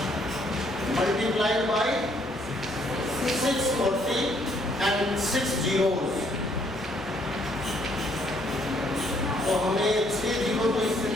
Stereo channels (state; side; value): normal; both; correlation 0.67